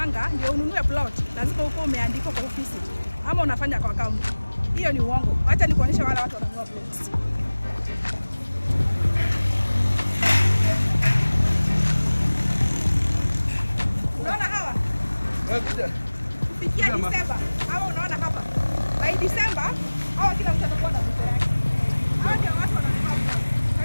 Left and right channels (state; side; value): inverted; both; correlation -1.00